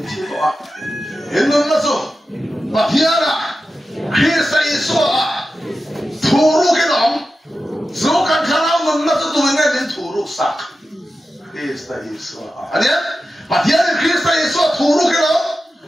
chi đó in nó số mà thiên à khi say số thủ ru cái đó số cần khá nào mình nó số tụi ngay đến thủ ru sạc khi say số anh em mà thiên khi say số thủ ru cái đó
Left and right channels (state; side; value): normal; both; correlation 0.92